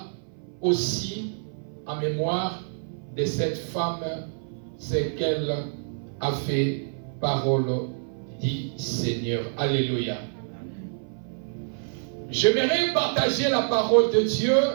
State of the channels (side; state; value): left; silent; 57 dB below the other